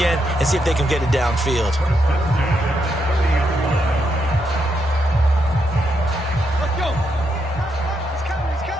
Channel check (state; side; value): normal; both; correlation 0.80